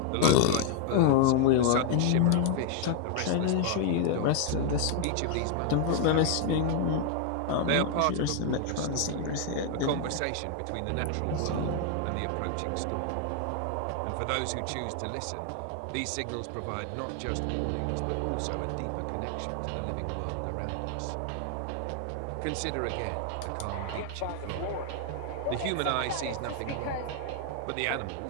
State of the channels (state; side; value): different; both; correlation 0.00